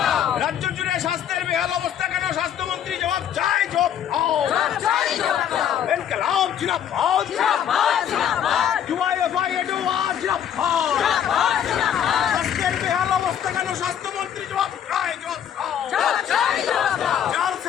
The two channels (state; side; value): quieter; right; 9.5 dB